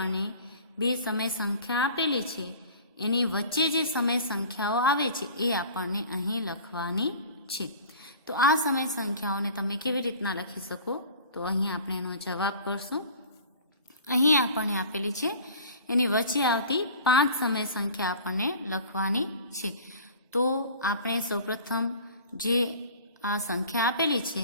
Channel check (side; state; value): both; inverted; correlation -0.43